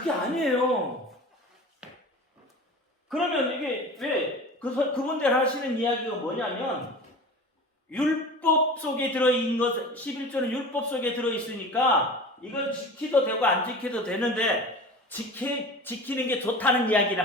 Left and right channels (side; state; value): both; normal; correlation 0.36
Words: 아니에요. 그러면 이게 왜 그분들 하시는 이야기가 뭐냐면 율법 속에 들어있는 것, 11조는 율법 속에 들어있으니까 이건 지키도 되고 안 지켜도 되는데 지키는 게 좋다는 이야기를